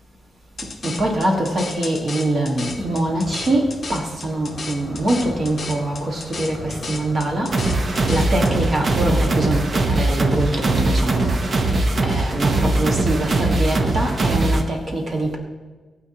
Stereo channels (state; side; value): normal; both; correlation 0.86